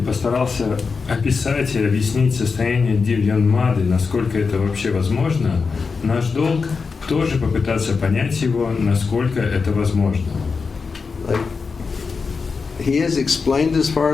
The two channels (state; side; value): quieter; right; 4.9 dB